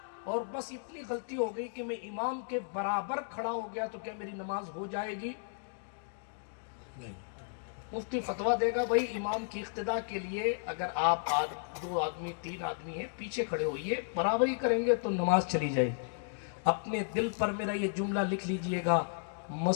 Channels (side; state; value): right; silent; digital silence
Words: اور بس اتنی غلطی ہو گئی کہ میں امام کے برابر کھڑا ہو گیا تو کیا میری نماز ہو جائے گی؟ نہیں۔ مفتی فتویٰ دے گا بھائی امام کی اقتداء کے لیے اگر آپ 2 آدمی 3 آدمی ہیں پیچھے کھڑے ہوئیے، برابری کریں گے تو نماز چلی جائے گی۔ اپنے دل پر میرا یہ جملہ لکھ لیجئے گا،